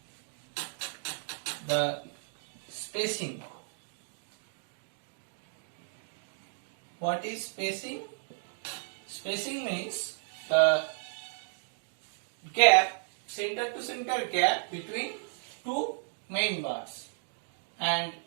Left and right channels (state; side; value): silent; left; digital silence